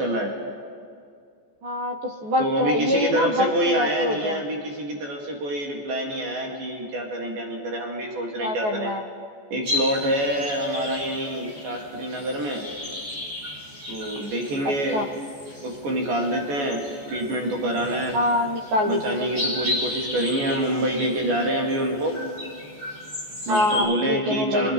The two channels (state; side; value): late; left; 14 ms